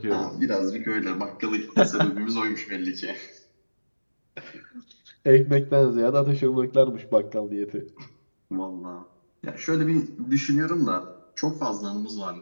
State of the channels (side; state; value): both; inverted; correlation -1.00